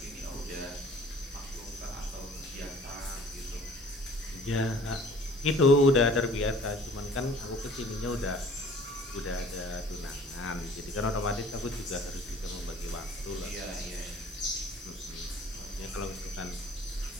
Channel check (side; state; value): both; normal; correlation 0.51